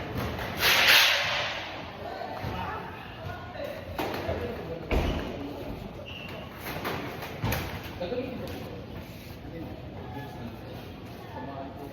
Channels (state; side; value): identical; both; correlation 1.00